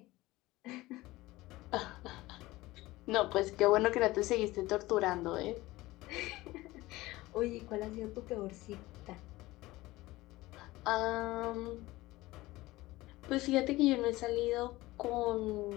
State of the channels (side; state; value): right; quieter; 18.9 dB